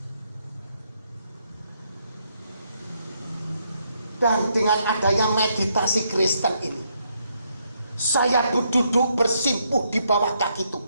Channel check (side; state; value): both; inverted; correlation -0.76